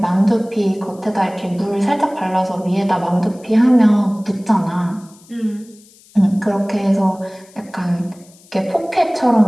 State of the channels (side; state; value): left; noise; hiss, 27 dB below the sound